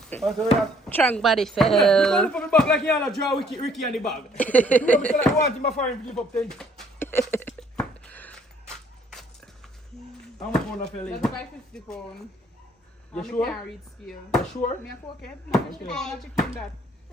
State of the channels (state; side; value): normal; both; correlation 0.62